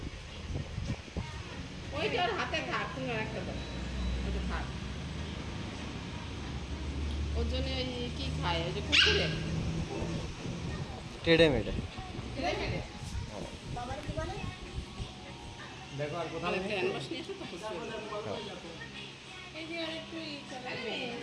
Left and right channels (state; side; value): identical; both; correlation 1.00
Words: ওইটা ওর হাতে থাক তুমি একটা দাও ওইটা থাক ওর জন্য ওই কি খায় ওই যে কুকুরে टेढ़े मेढ़े বাবার কি বলে দেখো আর কোথাও তাহলে নেই ক্যানভাস নিয়ে আসো তো খুশি হবে। এই যে আর একটু